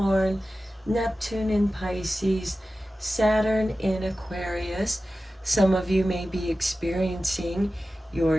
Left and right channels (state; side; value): normal; both; correlation 0.95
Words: Neptune in Pisces, Saturn in Aquarius. Some of you may be experiencing